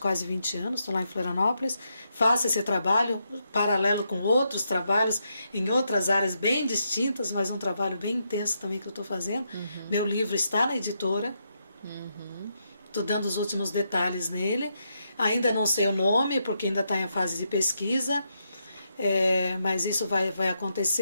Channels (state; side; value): inverted; both; correlation -0.81